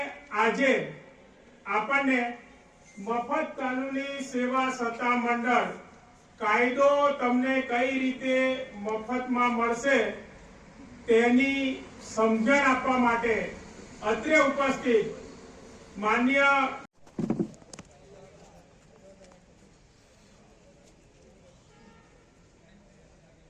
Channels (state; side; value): identical; both; correlation 1.00